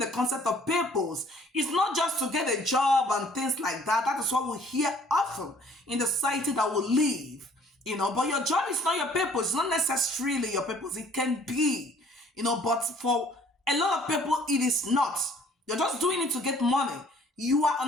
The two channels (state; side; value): normal; both; correlation 0.57